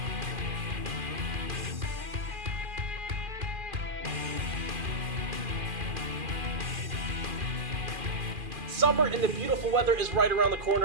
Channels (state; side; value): late; left; 2.4 ms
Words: Summer and the beautiful weather is right around the